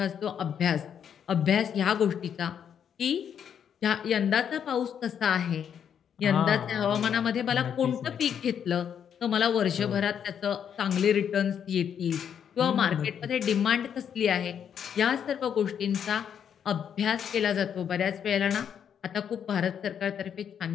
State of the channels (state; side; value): quieter; right; 8.3 dB